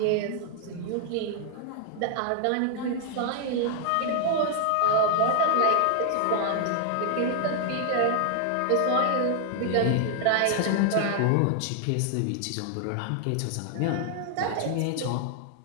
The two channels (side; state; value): both; different; correlation 0.00